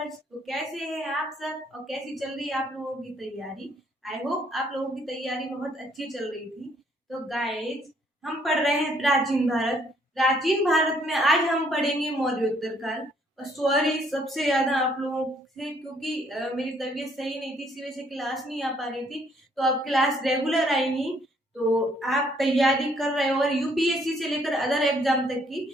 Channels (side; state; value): both; normal; correlation 0.66